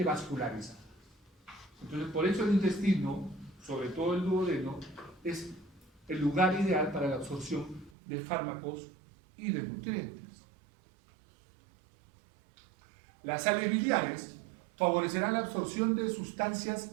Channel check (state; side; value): drops out; left; at 7.9 s